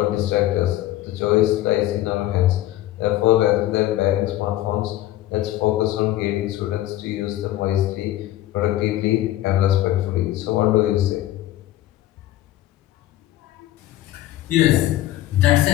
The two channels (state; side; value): quieter; right; 14.7 dB